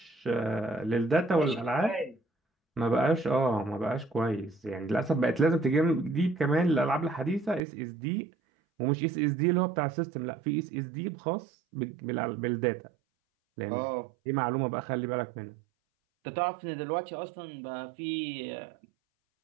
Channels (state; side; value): drops out; left; at 7.6 s